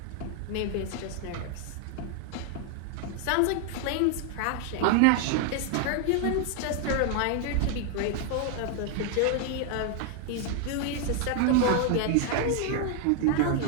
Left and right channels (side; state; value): both; different; correlation 0.00